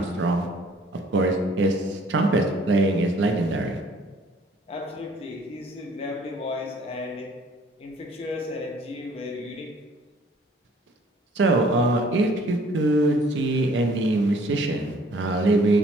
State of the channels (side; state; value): both; normal; correlation 0.57